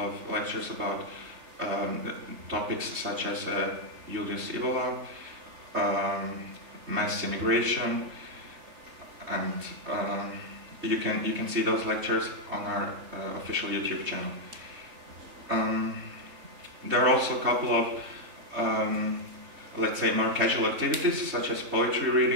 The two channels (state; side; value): late; left; 3.4 ms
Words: lectures about topics such as Julius Ivola, mass immigration, and you can see those lectures on our official YouTube channel. There are also a couple of, let's say, more casual activities, such as poetry